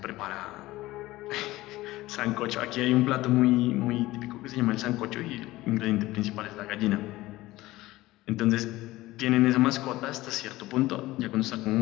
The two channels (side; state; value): right; quieter; 17.9 dB